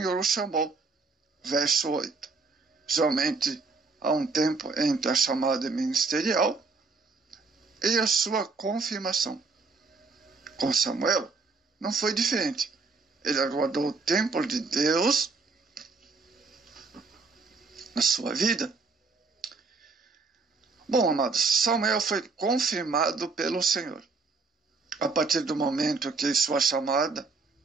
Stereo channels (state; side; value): quieter; left; 4.2 dB